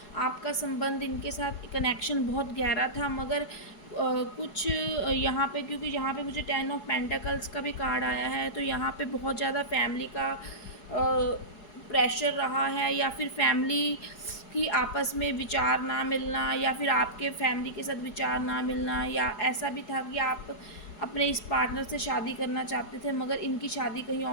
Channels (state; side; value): late; right; 4.7 ms